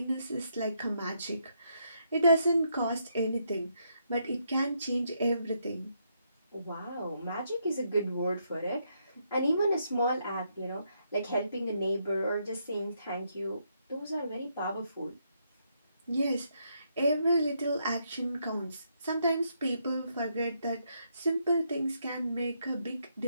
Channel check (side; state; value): both; inverted; correlation -0.77